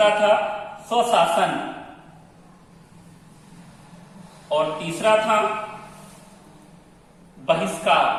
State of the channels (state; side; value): identical; both; correlation 1.00